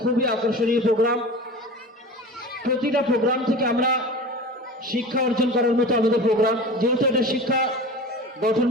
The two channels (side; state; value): both; normal; correlation 0.35